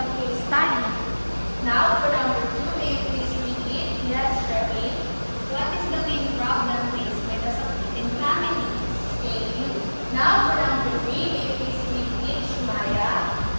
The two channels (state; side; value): inverted; both; correlation -1.00